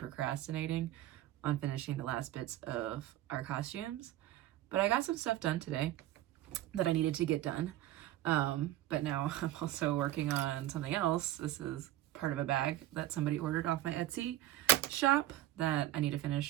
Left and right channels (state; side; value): quieter; left; 14.4 dB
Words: on finishing the last bits of our costumes. But I got some stuff done today that I needed to get done. But now I'm also working on something else. This is part of a bag that somebody ordered off my Etsy shop that I need to